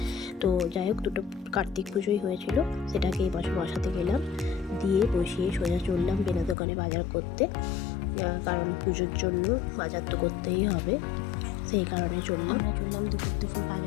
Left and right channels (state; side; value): drops out; right; at 6.6 s